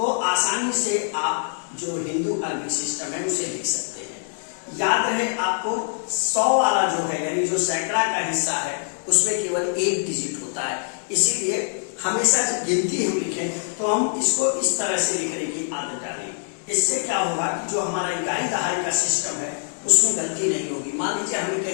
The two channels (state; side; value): silent; right; digital silence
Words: आसानी से आप जो हिंदू अरबिक सिस्टम है उसे लिख सकते हैं। याद रहे आपको 100 वाला जो है यानी जो सैकड़ा का हिस्सा है उसमें केवल 1 डिजिट होता है। इसीलिए हमेशा जब गिनती हम लिखें तो हम इसको इस तरह से लिखने की आदत डालें। इससे क्या होगा कि जो हमारा इकाई दहाई का सिस्टम है उसमें गलती नहीं होगी। मान लीजिए हमें